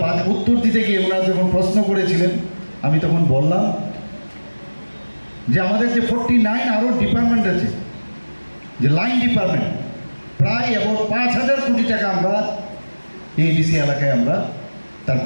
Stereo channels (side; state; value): both; inverted; correlation -1.00